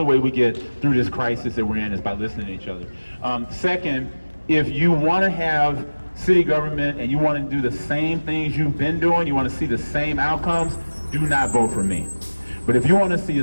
way we get through this crisis that we're in is by listening to each other. Second, if you want to have city government and you want to do the same things you've been doing, you want to see the same outcomes, do not vote for me. But if you want to see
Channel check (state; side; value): inverted; both; correlation -1.00